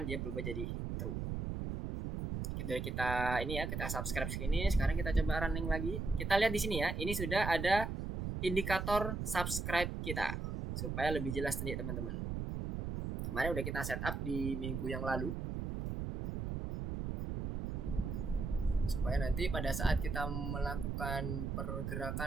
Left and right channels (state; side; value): noise; right; rumble, 3 dB below the sound